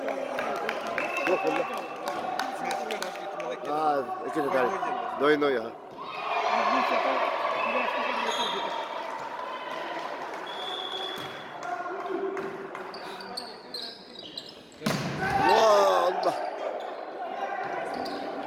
روح والله كده تعال نوي ها الله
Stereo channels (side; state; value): both; identical; correlation 1.00